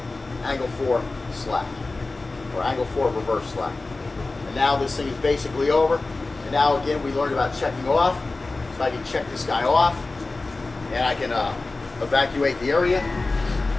angle 4 slap, or angle 4 reverse slap. And now this thing is basically over. And now again, we learned about checking off. So I can check this guy off, and I can evacuate the area,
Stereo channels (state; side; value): quieter; right; 3.4 dB